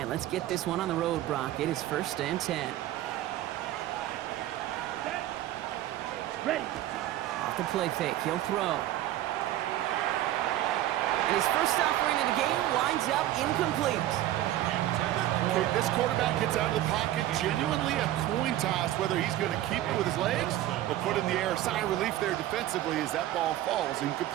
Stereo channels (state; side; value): quieter; left; 13.9 dB